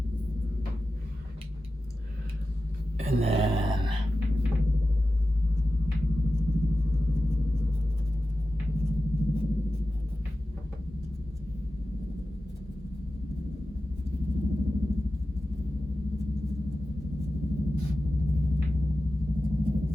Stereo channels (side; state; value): both; normal; correlation 0.93